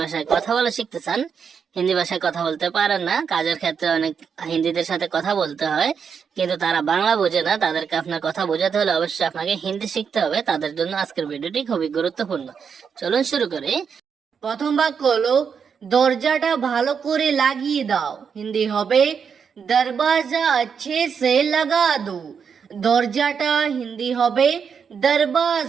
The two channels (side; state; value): left; quieter; 6.6 dB